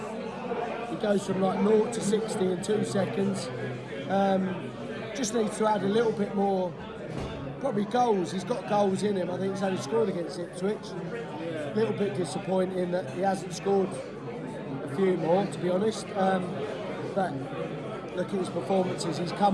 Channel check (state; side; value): identical; both; correlation 1.00